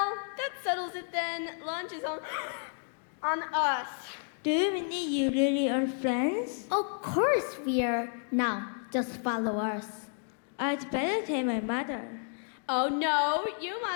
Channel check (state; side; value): silent; right; 57 dB below the other